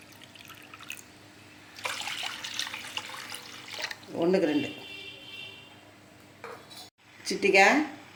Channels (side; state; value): both; identical; correlation 1.00